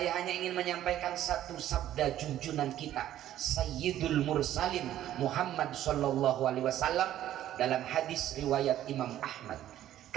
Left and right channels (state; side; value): quieter; left; 12.4 dB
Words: hanya ingin menyampaikan satu sabda junjungan kita Sayyidul Mursalin Muhammad sallallahu alaihi wasallam dalam hadis riwayat Imam Ahmad